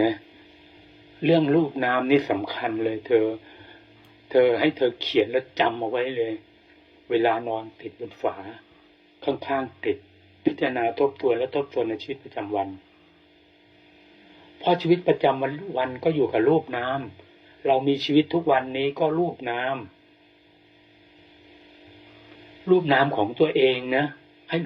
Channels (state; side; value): identical; both; correlation 1.00